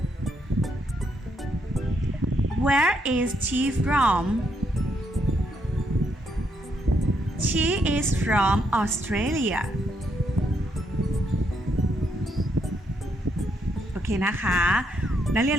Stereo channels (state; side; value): normal; both; correlation 0.76